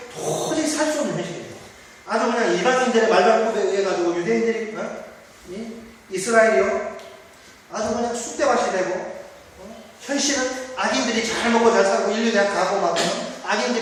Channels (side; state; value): both; identical; correlation 1.00